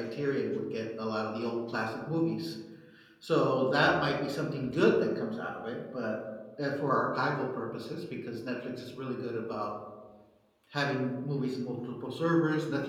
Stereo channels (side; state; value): both; identical; correlation 1.00